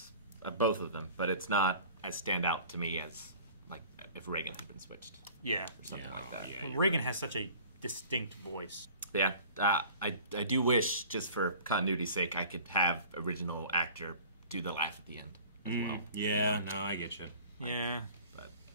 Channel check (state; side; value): inverted; both; correlation -0.46